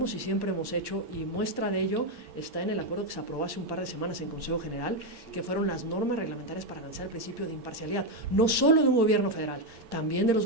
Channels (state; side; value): late; left; 8.7 ms